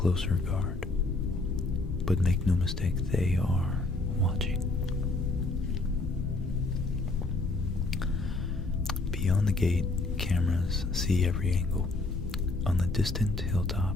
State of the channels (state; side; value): quieter; right; 3.2 dB